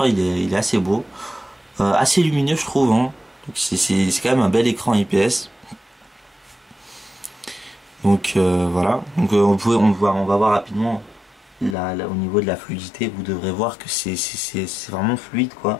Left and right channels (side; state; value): right; drops out; at 11.8 s